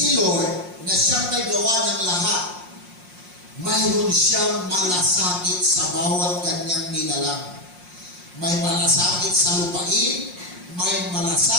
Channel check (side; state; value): left; late; 5.6 ms